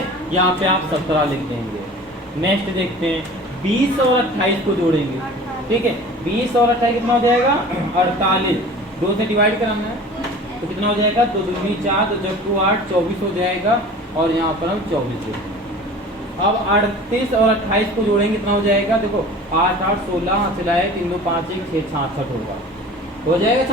यहाँ पे आप 17 लिख देंगे। नेक्स्ट देखते हैं 20 और 28 को जोड़ेंगे, ठीक है। 20 और 28 कितना हो जाएगा 48। 2 से डिवाइड कराना है तो कितना हो जाएगा, 2 दूनी 4, 2 चक्कू 8, 24 हो जाएगा। और यहाँ पर हम 24 देखेंगे। अब 38 और 28 को जोड़ेंगे, कितना हो जाएगा, देखो 8, 8, 16 सिलाए 3, 2, 5, 1, 6, 66 होगा, हो जाएगा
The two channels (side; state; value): both; normal; correlation 0.42